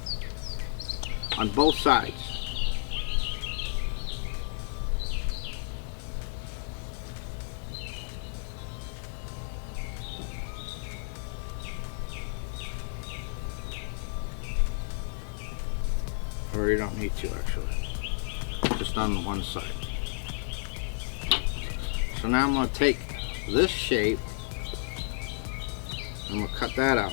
on both sides. Or you don't need to actually, just on one side. So now I'm going to take this shape and we'll cut that out.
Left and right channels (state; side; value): silent; right; digital silence